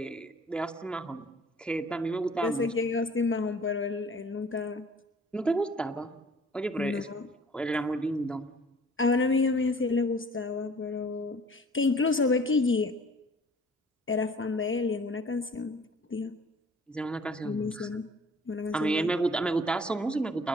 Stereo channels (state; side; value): normal; both; correlation 0.51